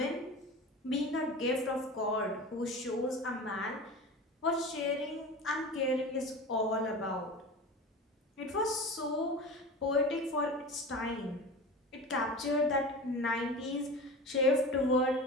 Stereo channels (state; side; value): normal; both; correlation 0.32